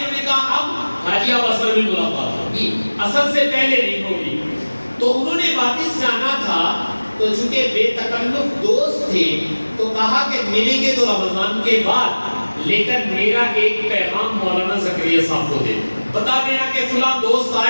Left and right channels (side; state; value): both; inverted; correlation -1.00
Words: نے کہا اب حاجی اب اصل میں ملاقات ہوگی، اصل سے پہلے نہیں ہوگی۔ تو انہوں نے واپس جانا تھا، تو چونکہ بے تکلف دوست تھے تو کہا کہ ملیں گے تو رمضان کے بعد، لیکن میرا ایک پیغام مولانا زکریا صاحب کو دے بتا دینا کہ فلاں دوست